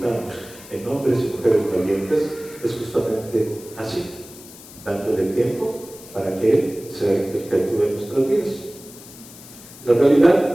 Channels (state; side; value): noise; left; hiss, 18 dB below the sound